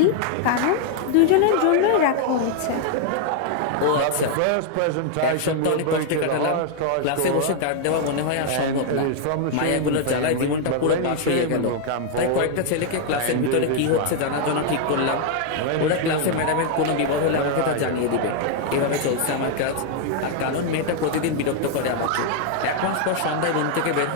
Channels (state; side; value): different; both; correlation 0.00